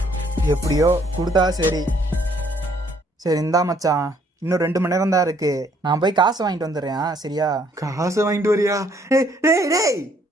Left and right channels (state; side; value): normal; both; correlation 0.65